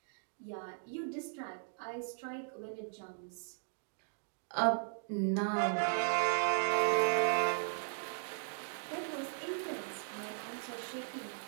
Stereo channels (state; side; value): silent; left; digital silence